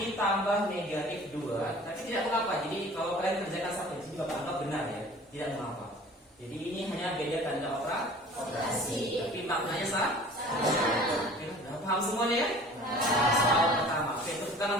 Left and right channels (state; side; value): normal; both; correlation 0.46